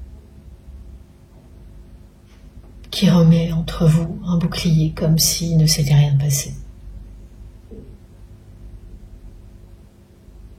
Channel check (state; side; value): identical; both; correlation 1.00